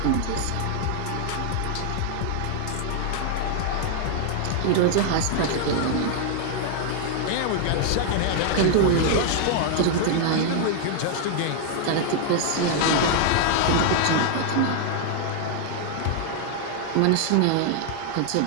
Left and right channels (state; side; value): different; both; correlation 0.00